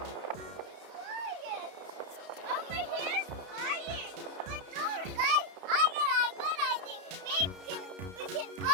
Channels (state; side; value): late; left; 32 ms